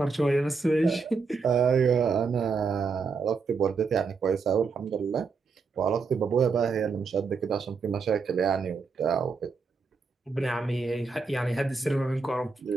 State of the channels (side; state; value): left; quieter; 4.8 dB